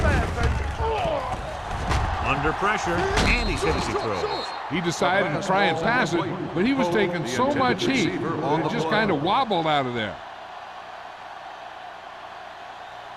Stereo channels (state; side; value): identical; both; correlation 1.00